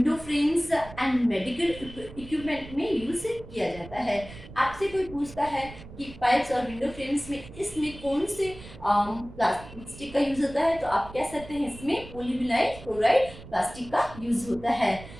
frames and medical equipment में यूज किया जाता है। आपसे कोई पूछता है कि पाइप्स और विंडो फ्रेम्स में इसमें कौन से प्लास्टिक का यूज होता है, तो आप कह सकते हैं इसमें पॉलीविनाइल क्लोराइड प्लास्टिक का यूज होता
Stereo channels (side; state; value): right; noise; rumble, 16 dB below the sound